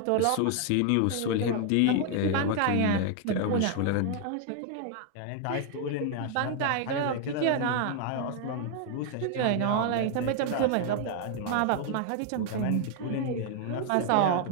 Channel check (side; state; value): both; different; correlation 0.00